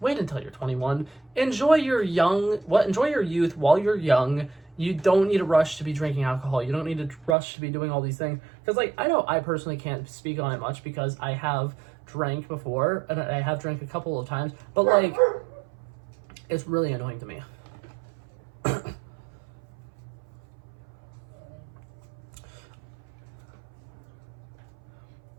until you're 21. Enjoy your enjoy your youth while you're young. You don't need a rush to be drinking alcohol. You don't need a rush to be doing all these things. Because, like, I know I personally can't speak on it much because I have drank before, and I have drank a couple of times. But, like, it's really annoying to me.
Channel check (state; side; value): drops out; left; at 7.4 s